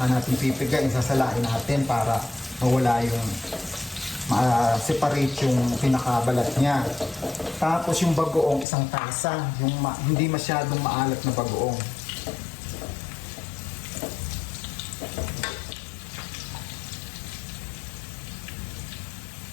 natin pipigain, sasalain natin para mawala yung separate yung pinakabalat niya. Tapos yung bagoong isang tasa, yung hindi masyadong maalat na bagoong.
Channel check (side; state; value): right; drops out; at 8.7 s